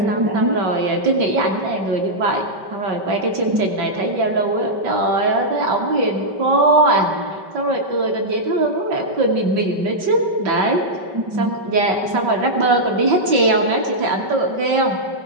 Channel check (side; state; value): left; late; 5.2 ms